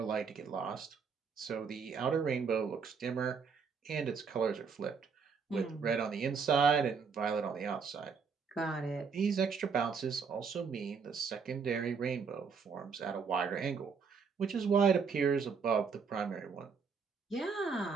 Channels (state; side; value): quieter; left; 5.6 dB